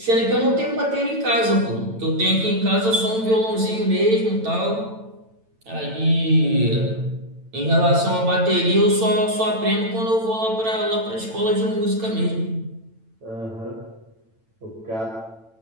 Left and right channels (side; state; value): left; late; 9.0 ms